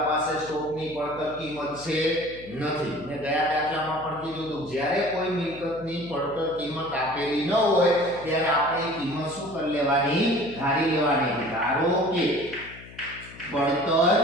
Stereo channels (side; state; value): left; noise; hum, 18 dB below the sound